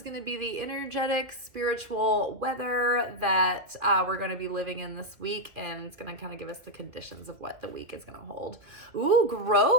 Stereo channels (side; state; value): left; late; 2.1 ms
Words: going to be the energetic, spiritual weather that we're going to be living in this week, and it's going to kind of give us the conditions of what the week is going to hold. Ooh,